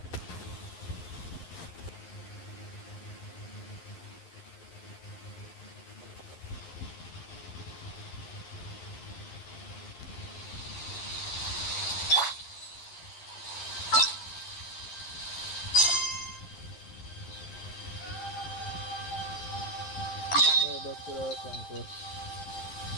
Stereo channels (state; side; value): late; right; 11 ms